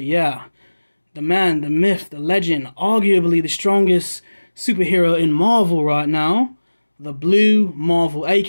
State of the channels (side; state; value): both; inverted; correlation -1.00